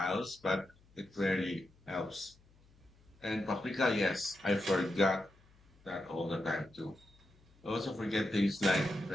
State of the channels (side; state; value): left; noise; hum, 29 dB below the sound